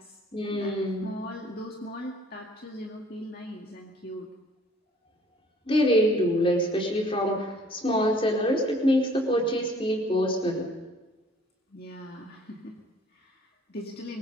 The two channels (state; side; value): normal; both; correlation 0.56